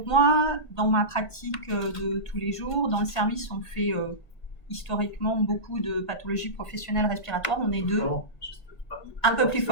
moi, dans ma pratique de tous les jours, dans le service, on fait historiquement beaucoup de pathologies professionnelles respiratoires. On est deux. Un peu plus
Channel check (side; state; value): right; late; 1.5 ms